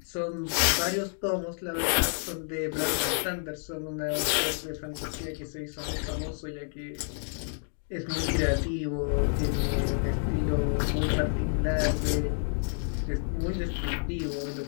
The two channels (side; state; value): right; silent; 58 dB below the other